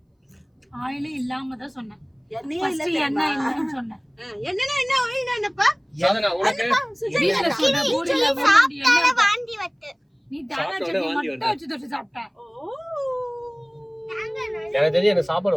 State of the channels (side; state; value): both; identical; correlation 1.00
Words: ஆயிலே இல்லாம தான் சொன்னேன். எண்ணெயே இல்ல என்ன இல்லன்னு சொன்னேன். என்னன்னா என்ன ஆயில்னானப்பா? சாதனா உனக்கு வீட்ல சொன்ன பூரியில வாந்தி வட்டு. நீ தேங்காய் சட்னி மட்டும் வச்சு தொட்டு சாப்பிட்ட. எனக்கு தெரிஞ்சு எனக்கு சாப்பாடு